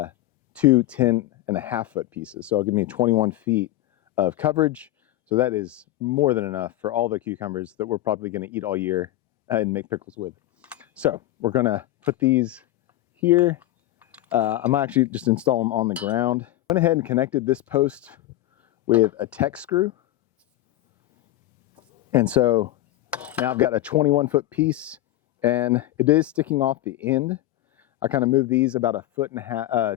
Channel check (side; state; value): right; quieter; 15.2 dB